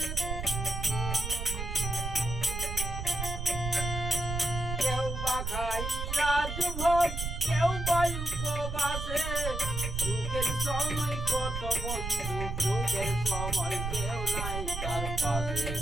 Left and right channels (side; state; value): right; noise; rumble, 4 dB below the sound